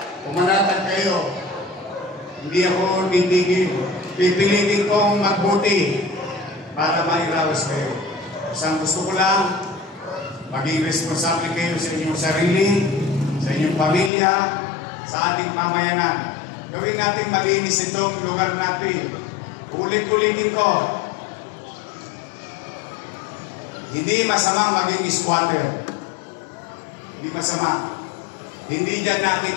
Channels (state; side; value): drops out; right; at 14.1 s